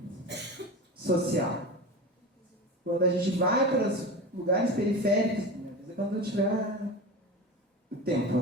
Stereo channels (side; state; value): both; normal; correlation 0.28